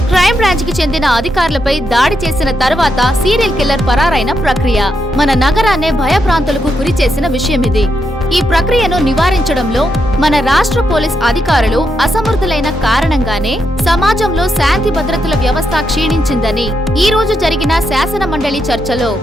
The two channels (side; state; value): both; normal; correlation 0.82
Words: Crime branch కి చెందిన అధికారులపై దాడి చేసిన తర్వాత సీరియల్ కిల్లర్ పరారైన ప్రక్రియ మన నగరాన్నే భయభ్రాంతులకు గురి చేసిన విషయం ఇది. ఈ ప్రక్రియను నివారించడంలో మన రాష్ట్ర పోలీస్ అధికారులు అసమర్థులైన కారణంగానే సమాజంలో శాంతి భద్రతల వ్యవస్థ క్షీణించిందని ఈ రోజు జరిగిన శాసన మండలి చర్చలో